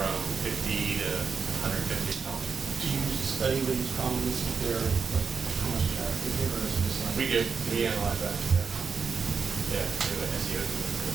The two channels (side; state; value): left; quieter; 5.5 dB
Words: 50 to 150 dollars. Do you study with these columnists, if they're, like, how much traffic they get, or is it just like? We do, we analyze that, yeah. Yeah, we do an SEO,